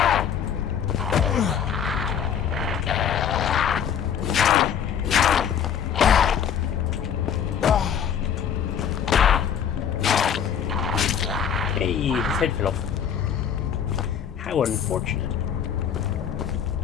Hey, his head fell off. How unfortunate.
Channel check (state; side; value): quieter; right; 8.3 dB